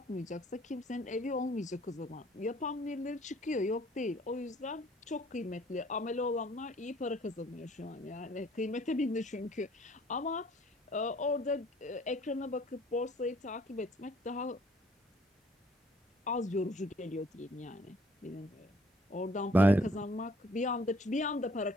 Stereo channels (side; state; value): both; normal; correlation 0.59